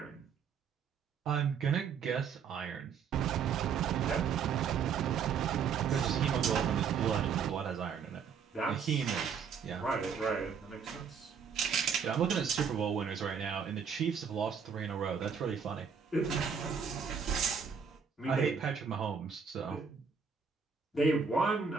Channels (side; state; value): left; quieter; 6.5 dB